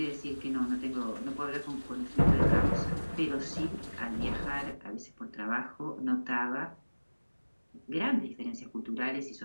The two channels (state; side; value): inverted; both; correlation -1.00